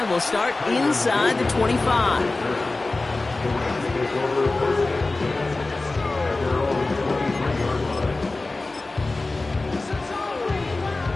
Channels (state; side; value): quieter; right; 3.2 dB